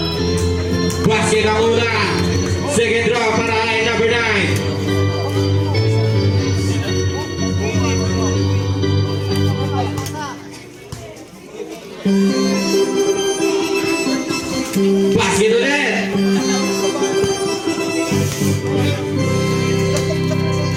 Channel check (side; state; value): both; identical; correlation 1.00